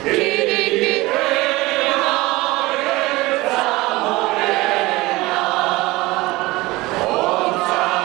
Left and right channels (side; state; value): left; quieter; 20.6 dB